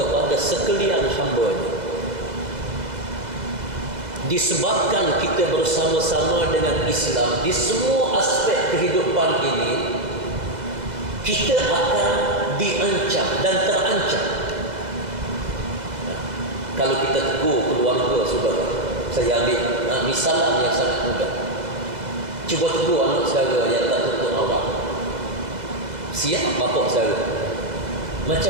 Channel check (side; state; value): left; late; 2.0 ms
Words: sekalian hamba-Nya. Disebabkan kita bersama-sama dengan Islam di semua aspek kehidupan ini, kita akan diancam dan terancam. Kalau kita tegur keluarga saudara, saya ambil misalan yang sangat mudah. Cuba tegur anak saudara yang tak tuntut awak. Siap bapak saudara